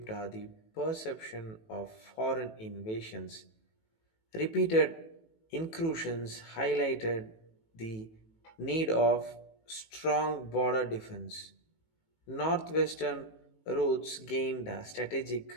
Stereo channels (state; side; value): late; right; 18 ms